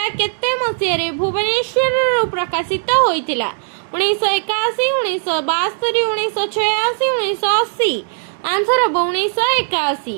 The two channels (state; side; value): silent; left; 67 dB below the other